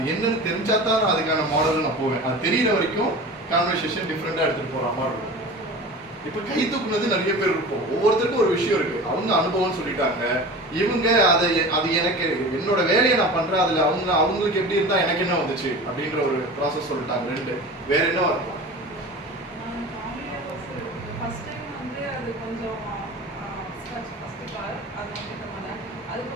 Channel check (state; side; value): normal; both; correlation 0.35